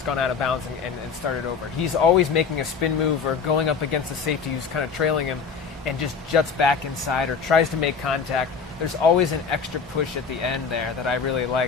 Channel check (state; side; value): quieter; right; 5.7 dB